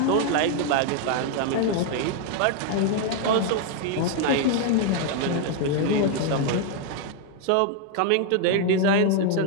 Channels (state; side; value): different; both; correlation 0.00